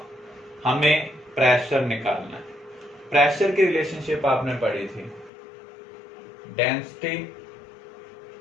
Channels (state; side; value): drops out; right; at 5.3 s